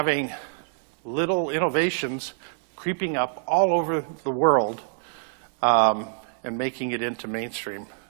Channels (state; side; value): silent; left; digital silence